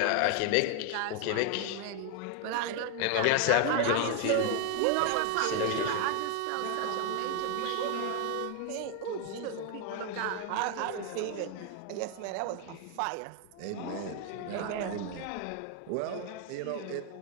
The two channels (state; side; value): different; both; correlation 0.01